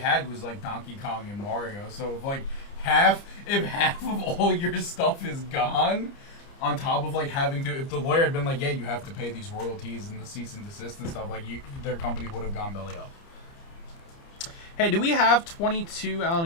was like Donkey Kong and Mario. So if like half of all your stuff is gone, on top of like having to, if the lawyer had been like, yeah, you have to pay these royalties and the cease and desist and stuff, like their company would have gone belly up. Hey, do we have 22 Allen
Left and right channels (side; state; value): right; late; 30 ms